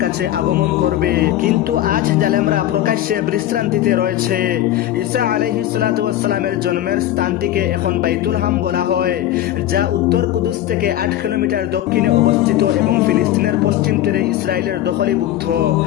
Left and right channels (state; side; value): quieter; right; 13.0 dB